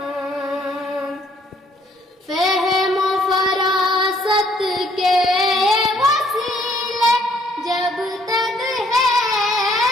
فہم و فراست کے وسیلے جب تک ہے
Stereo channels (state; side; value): normal; both; correlation 0.65